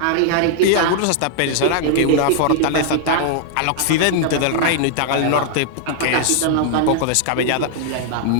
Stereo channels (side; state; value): both; different; correlation -0.01